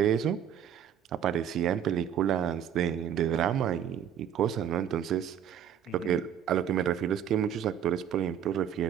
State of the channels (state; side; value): quieter; left; 9.3 dB